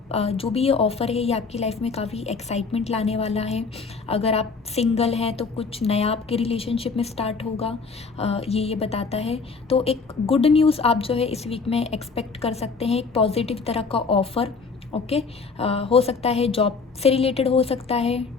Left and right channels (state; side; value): quieter; right; 4.7 dB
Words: ये ऑफ़र है ये आपकी लाइफ में काफ़ी एक्साइटमेंट लाने वाला है। अगर आप सिंगल हैं तो कुछ नया आपके रिलेशनशिप में स्टार्ट होगा, ये बताता है। तो एक गुड न्यूज़ आप जो है इस वीक में एक्सपेक्ट कर सकते हैं, एक पॉजिटिव तरह का ऑफ़र। ओके, हो सकता है जॉब से रिलेटेड हो सकता है,